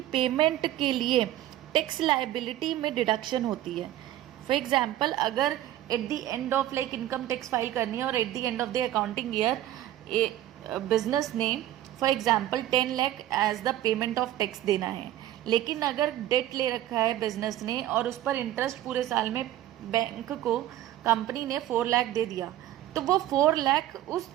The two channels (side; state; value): left; quieter; 13.3 dB